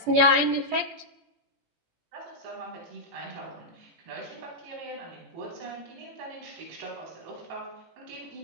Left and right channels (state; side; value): late; left; 17 ms